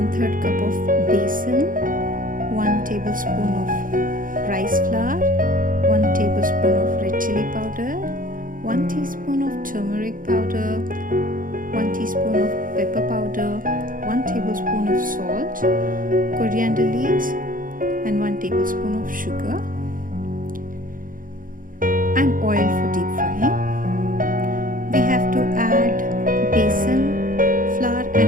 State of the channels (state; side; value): late; left; 0.40 ms